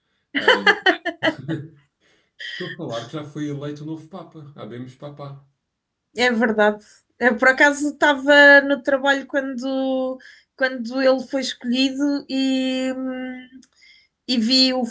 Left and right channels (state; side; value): identical; both; correlation 1.00